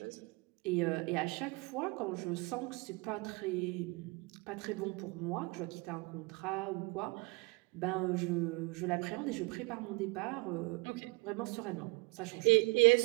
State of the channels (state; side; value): quieter; left; 25.6 dB